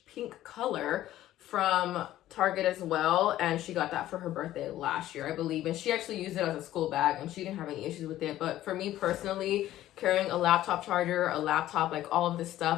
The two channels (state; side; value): quieter; right; 13.8 dB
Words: pink color from Target as well, and she got that for her birthday last year, I believe, and she actually used it as a school bag and she didn't have any issues with it. But for me personally, carrying a laptop charger, a laptop, like all of this